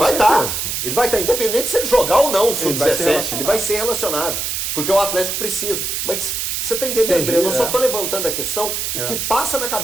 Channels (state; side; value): noise; right; hiss, 2 dB below the sound